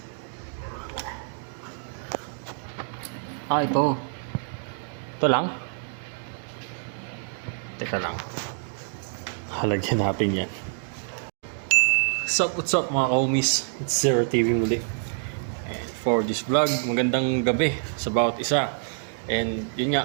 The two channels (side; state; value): left; silent; 60 dB below the other